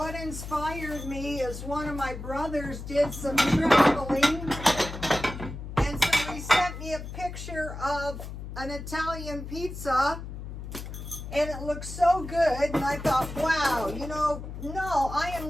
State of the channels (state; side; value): noise; left; hum, 9 dB below the sound